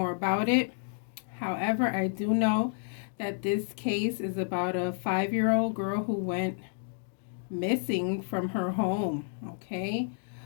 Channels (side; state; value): right; silent; digital silence